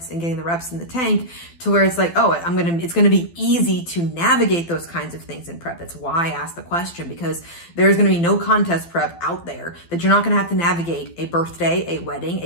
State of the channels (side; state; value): right; late; 12 ms